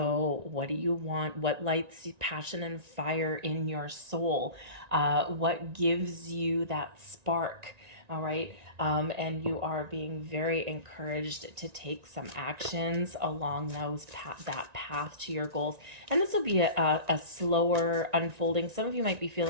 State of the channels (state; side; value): late; left; 1.9 ms